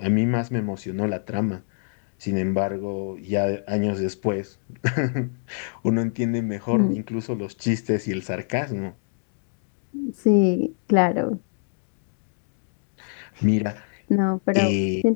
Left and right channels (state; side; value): silent; right; digital silence